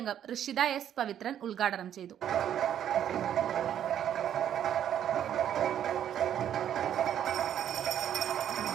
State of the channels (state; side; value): quieter; left; 10.1 dB